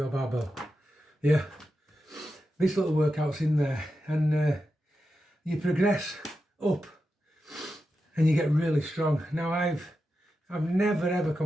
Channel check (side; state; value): both; normal; correlation 0.89